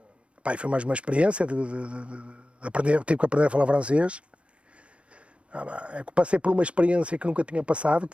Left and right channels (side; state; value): left; late; 0.060 ms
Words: Foi mais uma experiência de aprender, tive que aprender a falar francês. Passei por uma experiência que nunca tinha passado, que